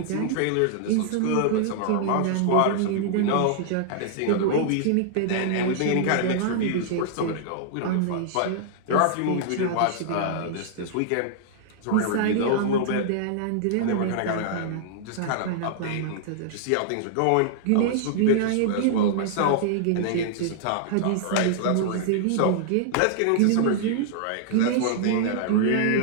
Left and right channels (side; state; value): both; different; correlation -0.01